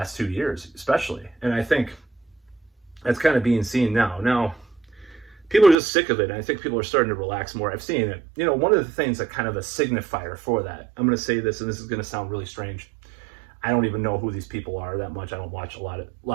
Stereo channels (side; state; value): left; drops out; at 5.8 s